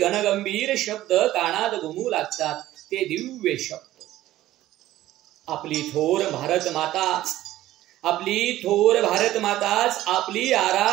शब्द कानात घुमू लागतात. ते दिव्य शब्द. आपली थोर भारत माताच, आपली थोर भारत माताच आपली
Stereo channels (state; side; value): quieter; left; 14.7 dB